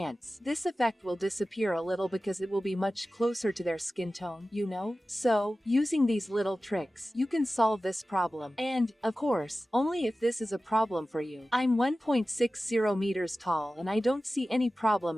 this effect will disappear a little because it will be much closer to their skin tone, you know? So, using these little tricks, you can solve this problem. And, of course, only if this is a problem for you. I'm 1.60 meters tall and I don't see any problem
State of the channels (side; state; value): both; normal; correlation 0.95